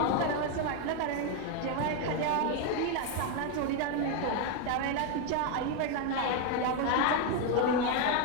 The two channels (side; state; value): both; different; correlation 0.02